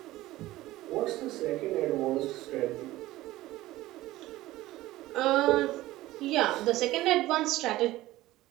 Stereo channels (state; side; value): quieter; left; 16.9 dB